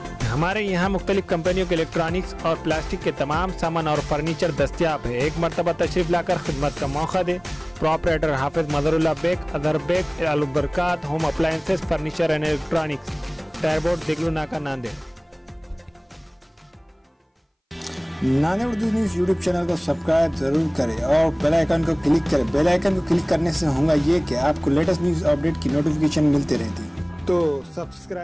हमारे यहाँ मुख्तलिफ कंपनियों के इलेक्ट्रॉनिक्स और प्लास्टिक के तमाम सामान और फर्नीचर दस्तियाब है। एक मरतबा तशरीफ लाकर खिदमत का मौका दे। Proprietor Hafiz Madarullah Baig, Adar Baig, Albarkat home appliances, furniture and electronics, टायरबोर्ड, Deglur Naka, Nanded. Nanded Urdu news YouTube channel को सब्सक्राइब जरूर करें और बेल आइकन को क्लिक करें। बेल आइकन को क्लिक करने से होगा ये कि आपको लेटेस्ट न्यूज़ अपडेट की नोटिफिकेशन मिलती रहती है, तो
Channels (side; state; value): both; identical; correlation 1.00